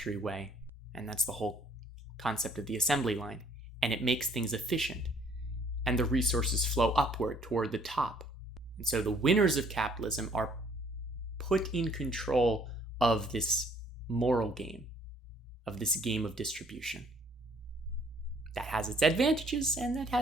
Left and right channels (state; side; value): normal; both; correlation 0.61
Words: way. And that's the whole concept of the assembly line. And it makes things efficient. And the resources flow upward toward the top. And so the winners of capitalism are put in control of this moral game, of this game of distribution. That has its advantages and that